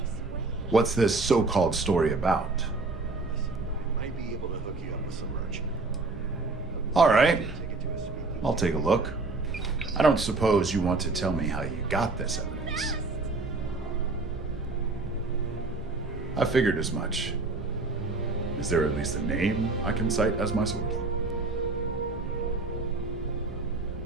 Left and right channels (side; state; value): left; quieter; 3.5 dB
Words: What's this so-called story about? Might be able to hook you up with some merchant. All right. I'll take a look. I don't suppose you want to tell me how you got this evidence. I figured as much. Is there at least a name I can cite as my source?